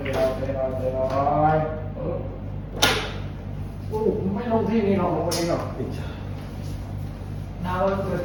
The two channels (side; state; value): both; identical; correlation 1.00